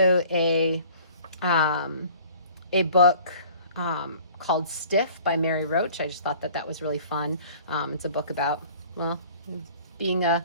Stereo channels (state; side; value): inverted; both; correlation -0.49